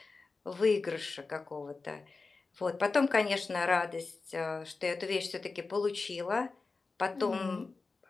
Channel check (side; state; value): right; quieter; 4.0 dB